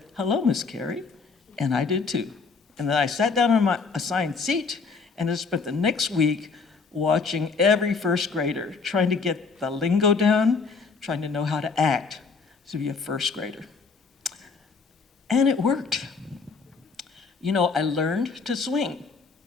"Hello, Miss Carey," and I did too. And then I sat down on my assigned seat and I spent the next week watching every first grader, trying to get the lingo down, trying to know how to act to be a first grader. And it worked. You know, I learned to swing,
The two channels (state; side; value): quieter; right; 4.8 dB